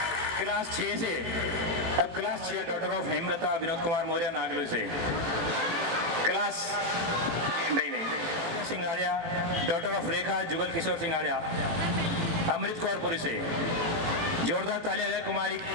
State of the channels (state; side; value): late; left; 18 ms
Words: क्लास 6 से अब class 6 daughter of Hemlata Vinod Kumar Maurya Nangloi से। क्लास नहीं सिंगाड़िया डॉटर ऑफ रेखा जुगल किशोर सिंगाड़िया अमृत कौर पुरी से। जोरदार तालियां है कुमारी